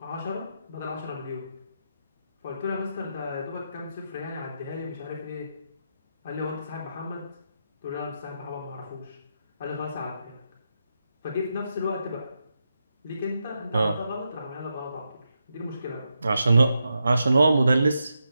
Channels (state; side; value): inverted; both; correlation -0.85